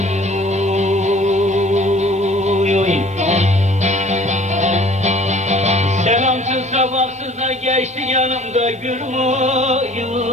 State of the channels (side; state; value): both; normal; correlation 0.51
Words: oy oy. Selamsız sabahsız da geçti yanımda gülüm oy